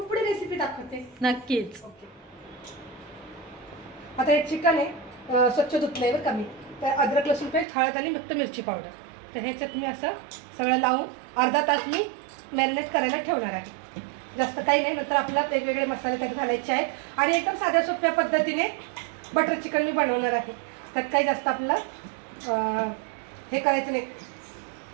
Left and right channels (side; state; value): left; drops out; at 7.7 s